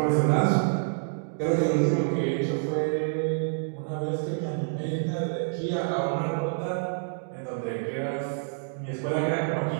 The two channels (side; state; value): left; silent; digital silence